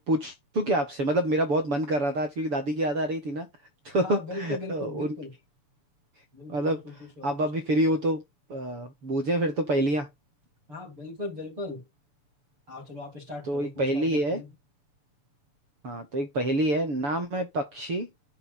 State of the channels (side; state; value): left; late; 7.0 ms